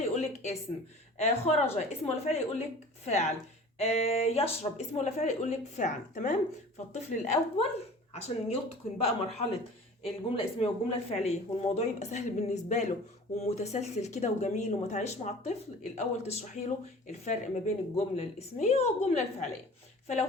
يقولك اسم، خرج اسم ولا فعل يقولك فعل، يشرب اسم ولا فعل يقولك فعل. تمام؟ فالطفل الاول عشان يتقن بقى مرحلة الجملة الاسمية والجملة الفعلية والموضوع يبقى سهل بالنسبة له ومتسلسل كده وجميل وما تعيش مع الطفل، الاول تشرحي له الفرق ما بين الجمله الاسميه والجمله الفعليه. فلو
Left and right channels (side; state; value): both; normal; correlation 0.43